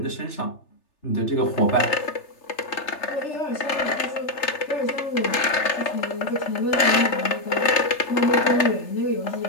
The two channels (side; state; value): right; late; 3.3 ms